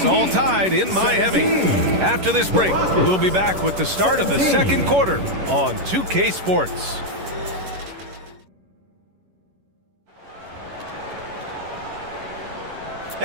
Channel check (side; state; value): left; late; 11 ms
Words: all tied in Miami. After this break, we'll be back with the start of the second quarter on 2K Sports.